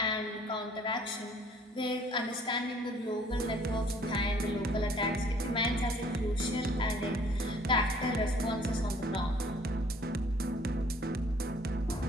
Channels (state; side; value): normal; both; correlation 0.57